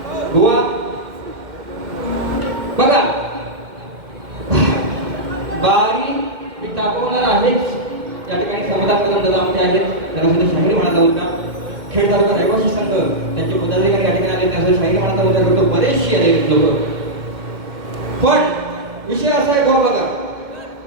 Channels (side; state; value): left; late; 2.1 ms